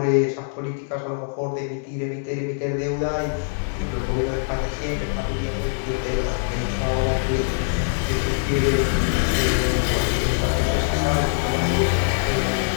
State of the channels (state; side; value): silent; right; digital silence